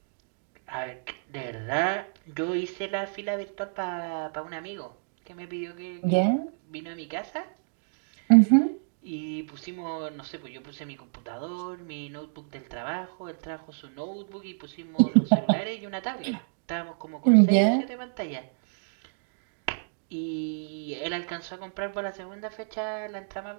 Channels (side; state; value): left; silent; digital silence